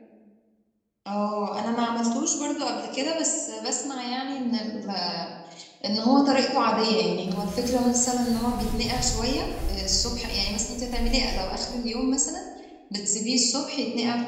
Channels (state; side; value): identical; both; correlation 1.00